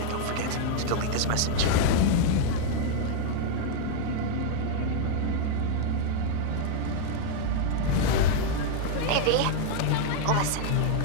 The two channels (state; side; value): different; both; correlation 0.00